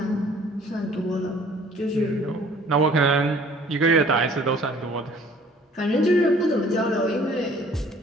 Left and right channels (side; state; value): both; normal; correlation 0.54